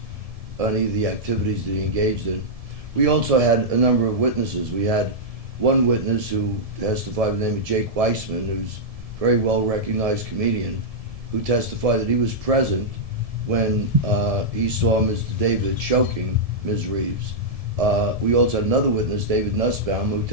any of the activities that he engaged in. We also had a number of witnesses. We had one witness who testified by the name of Jake Weissman, who's a very well-recognized comedian, who testified that he was present when he saw Mr. David choking Ms. Reeves. We also had another witness, David Nussbaum, who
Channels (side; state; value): left; late; 1.7 ms